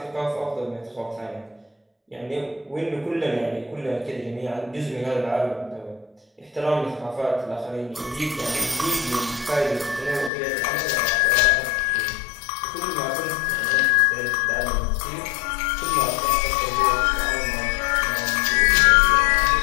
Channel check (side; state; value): right; drops out; at 10.3 s